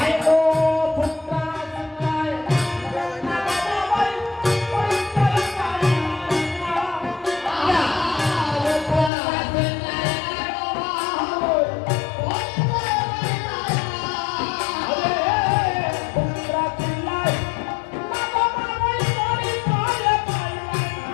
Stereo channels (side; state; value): right; drops out; at 9.1 s